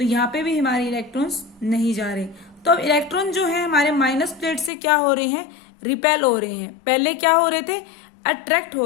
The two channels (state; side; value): drops out; right; at 4.7 s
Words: यहाँ पे भी हमारे इलेक्ट्रॉन्स नहीं जा रहे। तो अब इलेक्ट्रॉन जो है हमारे माइनस प्लेट से क्या हो रहे हैं, रिपेल हो रहे हैं। पहले क्या हो रहे थे, अट्रैक्ट हो